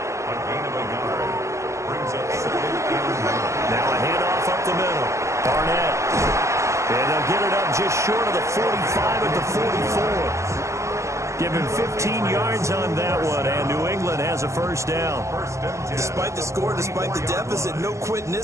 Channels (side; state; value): left; late; 0.14 ms